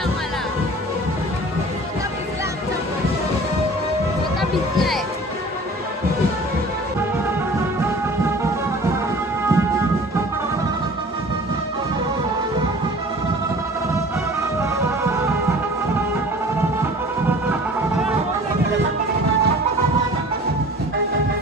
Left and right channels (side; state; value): both; normal; correlation 0.45